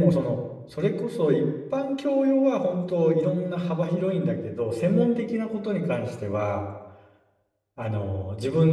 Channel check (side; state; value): both; identical; correlation 1.00